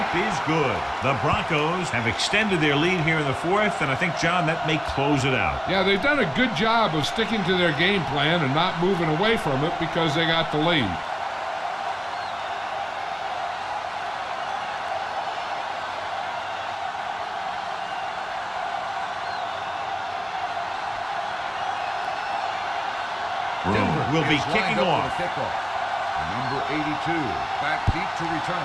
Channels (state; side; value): identical; both; correlation 1.00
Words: is good. The Broncos have extended their lead here in the 4th, and I think, John, that may close it out. Yeah, they've done a good job of sticking to their game plan and not moving away from it because they got the lead. Denver will be is kicking lined up off. for the kickoff. Number 82, back deep to